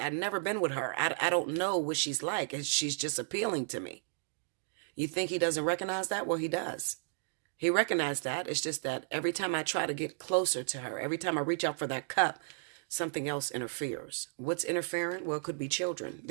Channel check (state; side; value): silent; left; digital silence